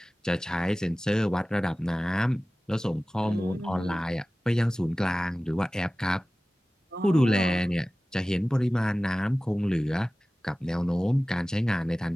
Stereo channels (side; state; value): both; normal; correlation 0.97